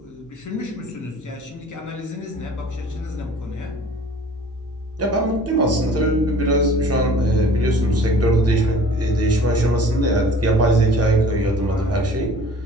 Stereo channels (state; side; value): normal; both; correlation 0.48